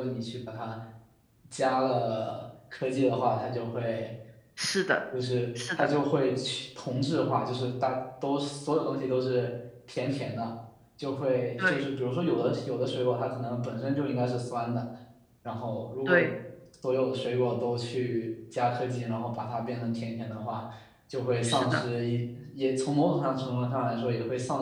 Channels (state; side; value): identical; both; correlation 1.00